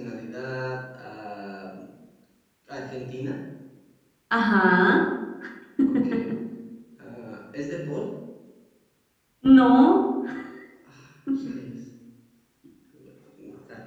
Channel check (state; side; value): identical; both; correlation 1.00